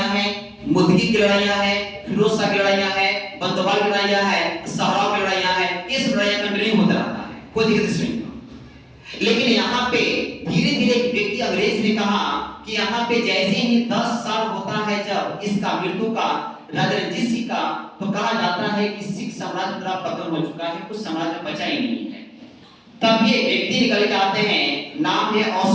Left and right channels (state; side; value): identical; both; correlation 1.00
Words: हैं, मुदगी की लड़ाइयां हैं, फिरोज शाह की लड़ाइयां हैं, बंदोबल की लड़ाइयां हैं, सहराव की लड़ाइयां हैं। इस लड़ाइयां कंटिन्यू होता रहता है, कोई दिक्कत नहीं। लेकिन यहाँ पे धीरे धीरे एक व्यक्ति अंग्रेज ने कहा कि यहाँ पे जैसे ही 10 साल होता है जब इसका मृत्यु का राजा रणजीत सिंह का, तो कहा जाता है कि सिख साम्राज्य पूरा पतन हो चुका है, कुछ साम्राज्य बचा ही नहीं है। तब ये व्यक्ति निकल के आते हैं, नाम है